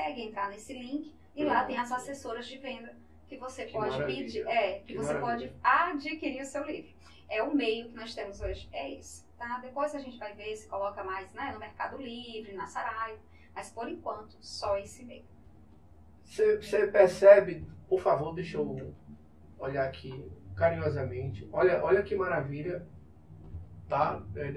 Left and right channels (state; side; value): identical; both; correlation 1.00